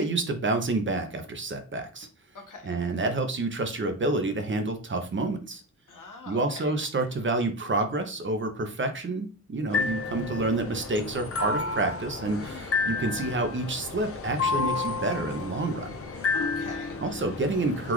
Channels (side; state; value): both; normal; correlation 0.23